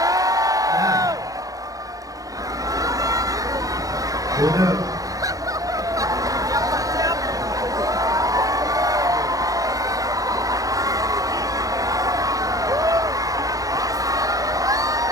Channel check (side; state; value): left; late; 0.17 ms